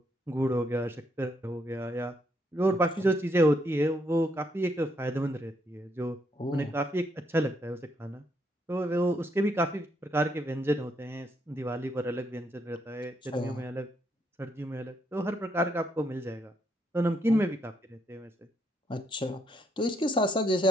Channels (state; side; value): normal; both; correlation 0.74